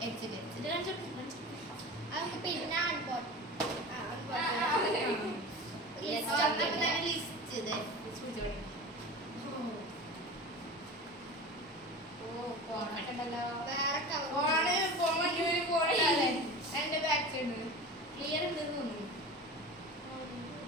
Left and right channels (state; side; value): normal; both; correlation 0.33